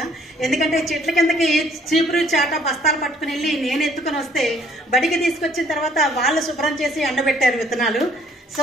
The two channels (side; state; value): both; normal; correlation 0.62